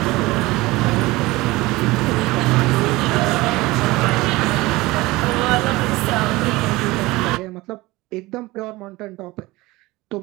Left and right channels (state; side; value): quieter; left; 20.5 dB